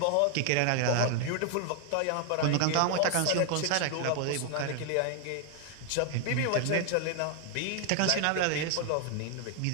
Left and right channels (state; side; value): different; both; correlation 0.00